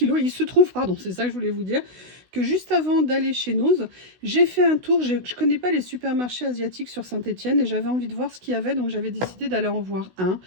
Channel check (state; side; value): late; left; 16 ms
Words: il se trouve, pardon, c'est ça que je voulais vous dire, que juste avant d'aller chez Noz, j'ai fait un tour. Je ne connais pas les supermarchés asiatiques sur Saint-Étienne et j'avais envie de voir ce qu'il y avait, donc j'avais décidé d'aller en voir un.